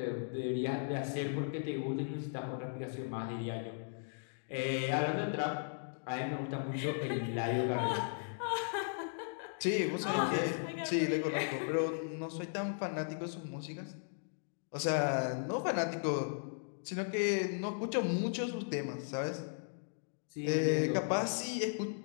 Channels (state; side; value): silent; right; digital silence